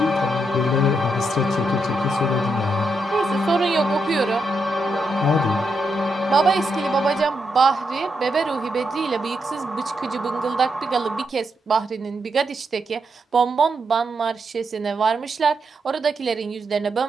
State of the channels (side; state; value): both; normal; correlation 0.82